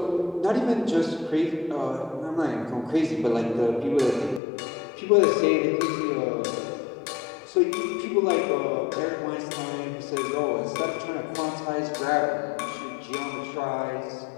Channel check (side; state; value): right; drops out; at 4.4 s